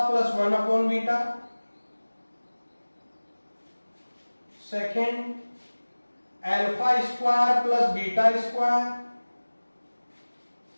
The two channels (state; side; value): inverted; both; correlation -1.00